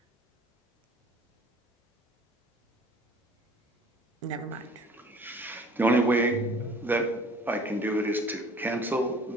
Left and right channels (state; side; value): normal; both; correlation 0.50